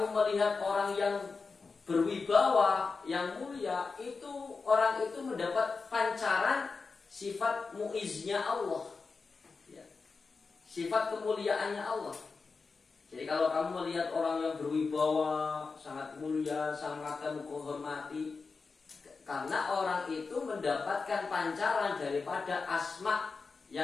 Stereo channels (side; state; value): right; quieter; 4.5 dB